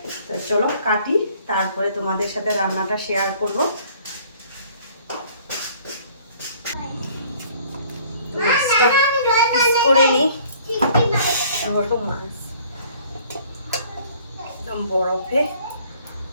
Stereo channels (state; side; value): inverted; both; correlation -0.56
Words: তো চলো কাটি, তারপরে তোমাদের সাথে রান্নাটা শেয়ার করব। মাছটা পিস করে নিই। বড় মাছ একদম বরফে।